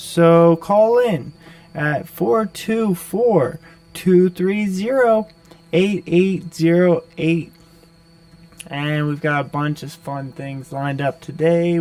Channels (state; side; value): identical; both; correlation 1.00